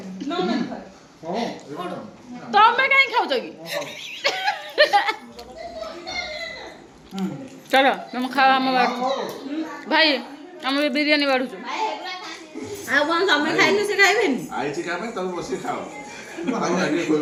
ତମେ କାହିଁ ଖାଉଛ କି ଚଲ ତମେ ଖାଅ ଆମ ଭାଇ ଆମେ ବିରିୟାନୀ ବାଢୁଛୁ ଆଉ କ'ଣ ତମେ ଖାଇଲେ ସେ ଖାଇବେନି ଆଇଛି କା ପାଇଁ ତମେ ବସିକି ଖାଅ ଆଉ ଆଗେ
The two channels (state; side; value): identical; both; correlation 1.00